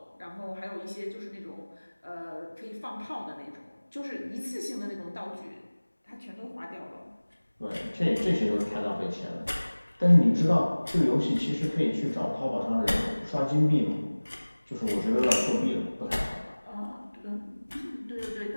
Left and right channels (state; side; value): inverted; both; correlation -1.00